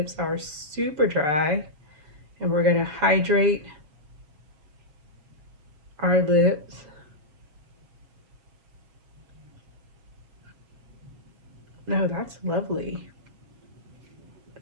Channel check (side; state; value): left; late; 6.8 ms